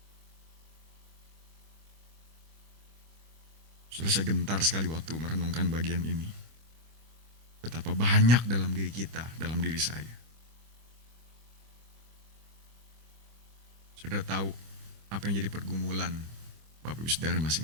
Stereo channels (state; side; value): late; left; 25 ms